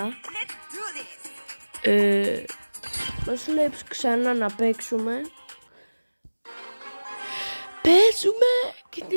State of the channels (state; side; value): inverted; both; correlation -1.00